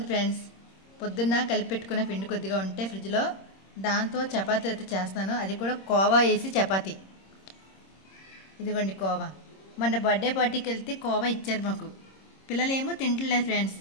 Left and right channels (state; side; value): late; right; 26 ms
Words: ఫ్రెండ్స్. పొద్దున్న కలిపి పెట్టుకున్న పిండి కొద్దిగా ఉంటే ఫ్రిడ్జ్లో, దాంతో చపాతీ అయితే చేస్తాను. అది కూడా కోవా వేసి చపాతీ. ఇదిగోండి కోవా. మొన్న బర్త్డే పార్టీకి వెళ్తే కోవా ఇచ్చారు మాకు. పిల్లలు ఏమో తింటలేదు ఫ్రెండ్స్.